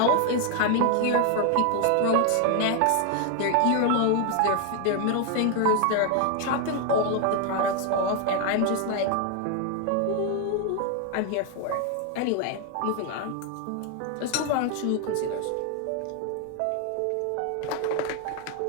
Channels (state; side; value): different; both; correlation 0.01